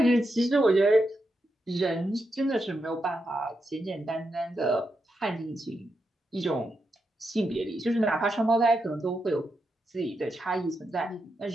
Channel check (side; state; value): both; normal; correlation 0.85